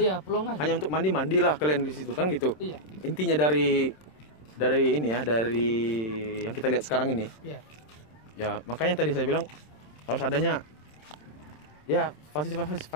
pelong aja. Hanya untuk mandilah kalian di situ kan gitu. Iya. Intinya dari ini ya, dari yang kita lihat sekarang ini. Iya. Ya, makanya tadi saya bilang harus adanya ya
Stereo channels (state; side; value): late; right; 27 ms